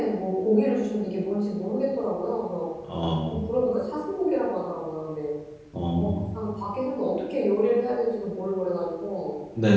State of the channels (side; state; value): both; identical; correlation 1.00